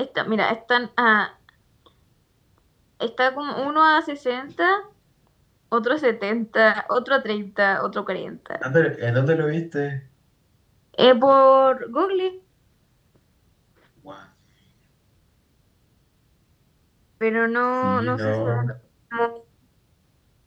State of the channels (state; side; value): identical; both; correlation 1.00